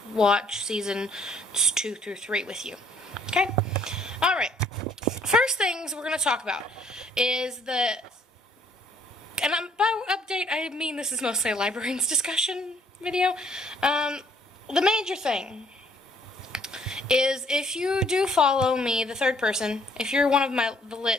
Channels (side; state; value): both; normal; correlation 0.62